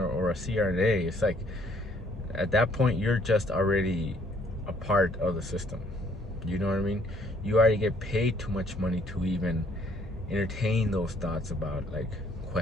or a CRNA, it's like at that point you're just already a part of the system. You know what I mean? You already get paid too much money to even entertain those thoughts about like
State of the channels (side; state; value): both; normal; correlation 0.64